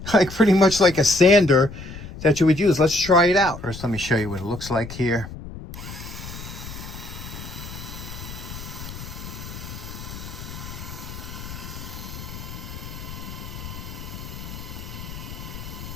pretty much like a sander that you would use. Let's try it out. First, let me show you what it looks like here.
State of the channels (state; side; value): noise; left; rumble, 11 dB below the sound